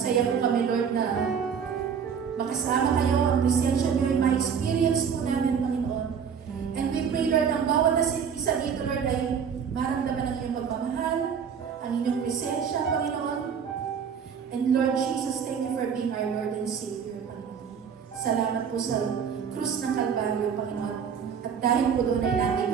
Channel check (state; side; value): quieter; left; 7.1 dB